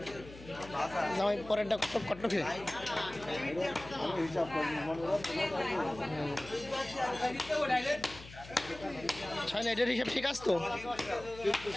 জামাই পরেরটা কত খেয়ে ছয় না, এটার হিসাব ঠিক আছে তো।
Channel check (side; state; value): left; noise; hum, 17 dB below the sound